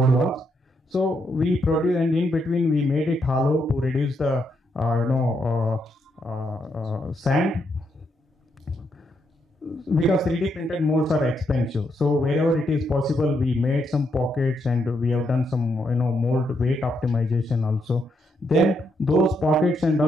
walls. So we produce, and in between we made it hollow to reduce the sand, because 3D printed molds are expensive. So wherever it is possible, we made some pockets, and we have done some mold weight optimization also. Then those pockets and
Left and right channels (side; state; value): both; normal; correlation 0.78